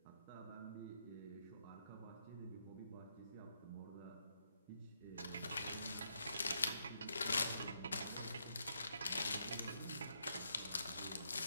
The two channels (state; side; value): inverted; both; correlation -0.77